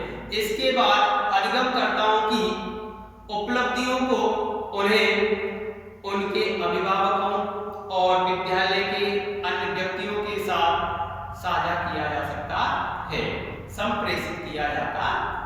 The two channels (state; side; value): identical; both; correlation 1.00